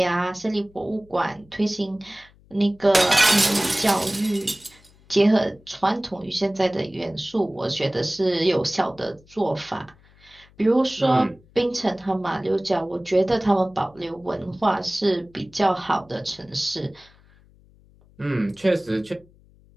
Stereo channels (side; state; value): left; noise; hum, 28 dB below the sound